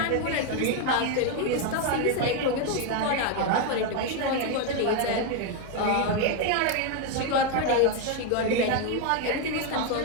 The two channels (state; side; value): different; both; correlation 0.01